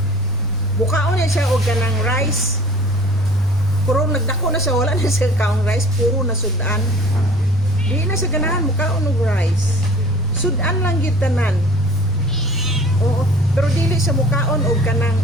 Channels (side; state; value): right; noise; rumble, 16 dB below the sound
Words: Bukaon niya siya og ganang rice. Puro nagdako na siya, wala na siya kaong rice, puro na sudan. Di na siya ganahan mukaon og rice. Sudan lang gitanan. Oo, pero dili sa mukaon og kanang